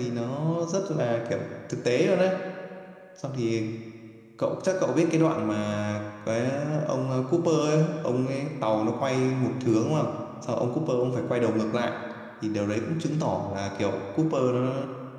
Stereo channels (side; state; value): both; identical; correlation 1.00